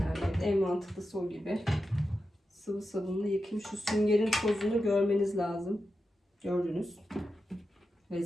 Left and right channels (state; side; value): normal; both; correlation 0.90